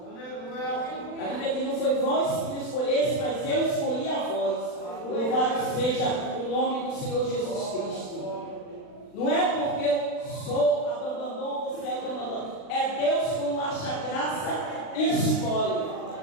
A Bíblia diz, não foi vós que me escolhesse, mas eu escolhi a vós. Louvado seja o nome do Senhor Jesus Cristo. Não é porque eu sou a bambambam, você é a bambambam. É Deus como acha graça e escolhe.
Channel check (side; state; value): right; late; 39 ms